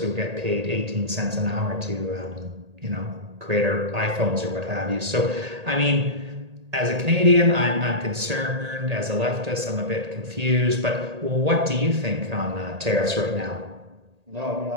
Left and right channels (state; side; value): late; left; 1.8 ms